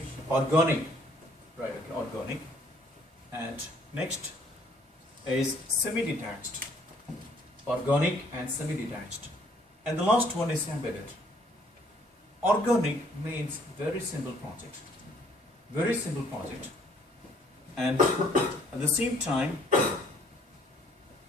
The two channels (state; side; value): normal; both; correlation 0.61